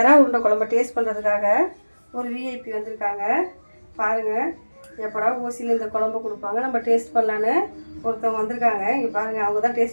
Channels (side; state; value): both; inverted; correlation -1.00